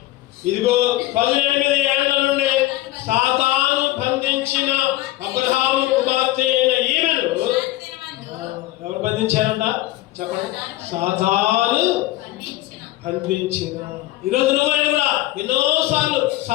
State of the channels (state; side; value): quieter; right; 16.8 dB